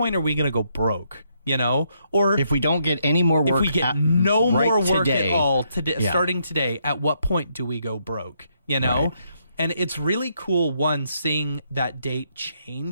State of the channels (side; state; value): both; inverted; correlation -0.74